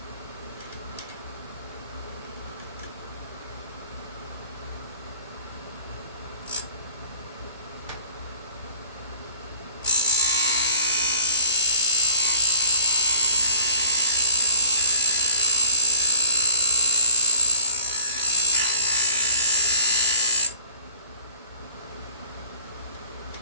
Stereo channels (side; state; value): both; inverted; correlation -0.53